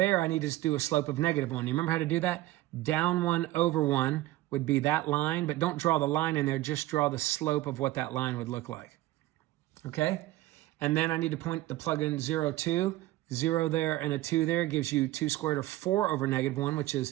I need to do a slope of -1. You remember how to do that? Down 1 over 1 would be that line, but don't draw the line in there. Just draw the slope of what that line would look like. Okay? And then I need to plug in 0, 2. 0 there and a 2 there gives you 2 squared root of 4 over negative 1, which is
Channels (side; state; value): left; quieter; 16.5 dB